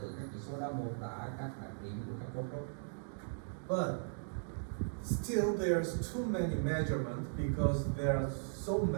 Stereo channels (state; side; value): silent; left; digital silence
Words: từ các chỉ số đó, mô tả các đặc điểm của các cấu trúc. But still there's too many measurements because there are so